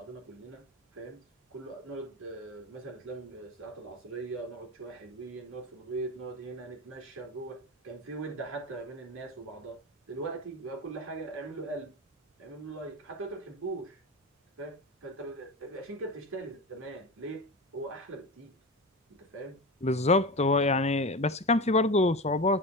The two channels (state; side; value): normal; both; correlation 0.25